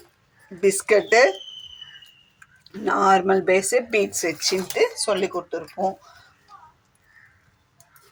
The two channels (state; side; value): identical; both; correlation 1.00